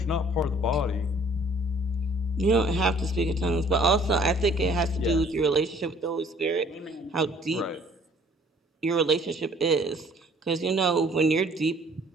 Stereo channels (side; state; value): both; normal; correlation 0.57